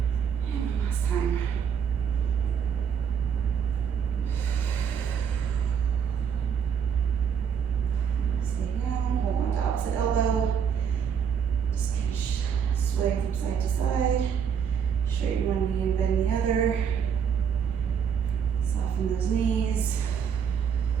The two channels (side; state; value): left; quieter; 7.4 dB